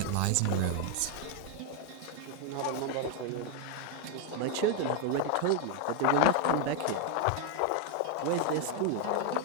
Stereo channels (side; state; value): both; different; correlation 0.01